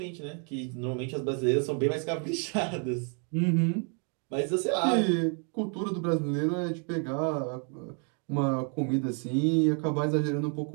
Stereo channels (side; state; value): left; quieter; 39.7 dB